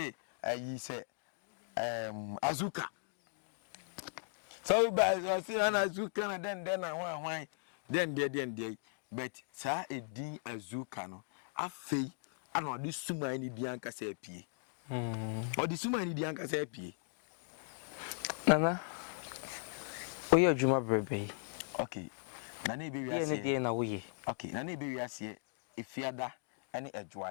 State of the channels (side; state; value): right; silent; digital silence